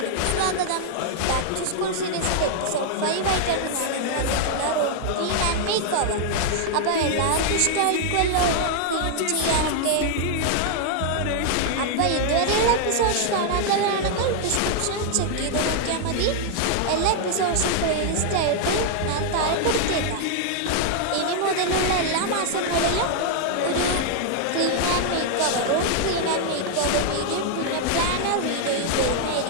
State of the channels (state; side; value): different; both; correlation 0.00